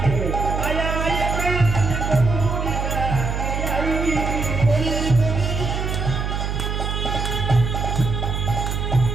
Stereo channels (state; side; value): noise; right; hum, 2 dB below the sound